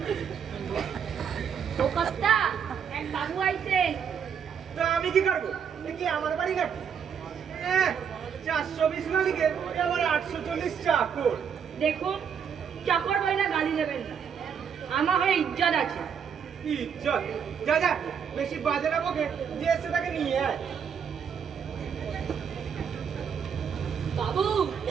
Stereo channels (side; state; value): left; quieter; 7.4 dB